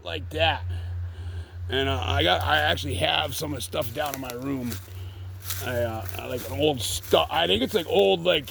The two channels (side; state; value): both; identical; correlation 1.00